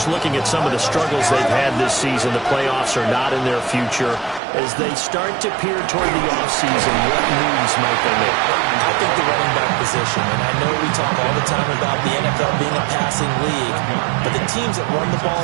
looking at some of the struggles they've had this season. The playoffs are not in their future. As they start to peer toward the offseason, what moves might they make? I think the running back position, and I know we talk all the time about the NFL being a passing league, but the teams that run the ball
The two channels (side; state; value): left; drops out; at 4.4 s